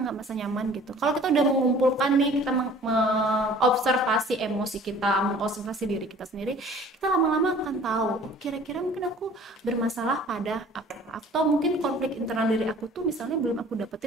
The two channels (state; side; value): normal; both; correlation 0.50